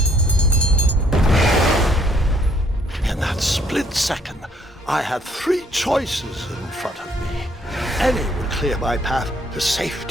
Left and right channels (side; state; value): both; normal; correlation 0.66